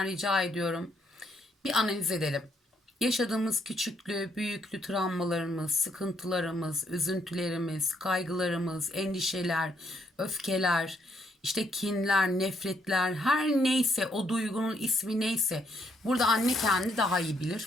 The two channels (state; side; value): normal; both; correlation 0.72